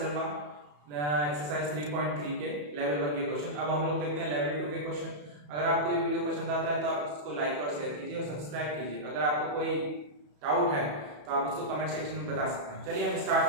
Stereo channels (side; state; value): left; late; 34 ms